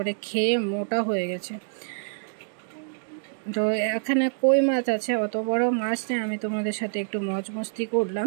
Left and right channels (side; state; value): left; silent; digital silence